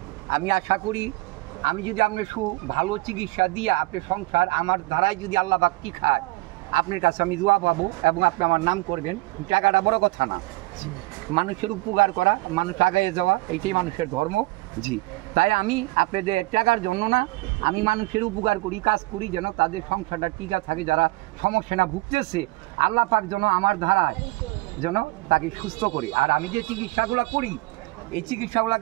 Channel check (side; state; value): left; quieter; 22.0 dB